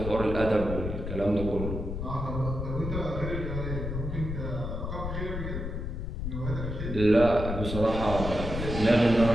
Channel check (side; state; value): left; noise; rumble, 4 dB below the sound